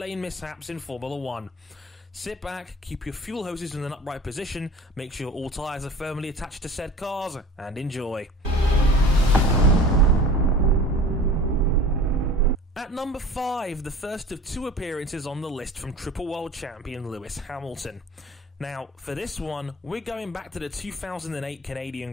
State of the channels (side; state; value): both; normal; correlation 0.41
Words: mishaps in Formula 1. Sit back, keep your fuel hoses in an upright position, make sure all tyres are firmly attached to said cars, and enjoy. At number 5, the first of two appearances on the list from Triple World Champion Lewis Hamilton. Now, for this one, we're going back to the 2008 Canadian